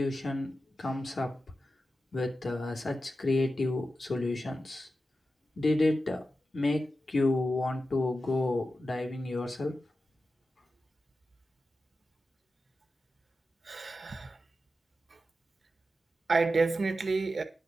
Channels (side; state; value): both; normal; correlation 0.91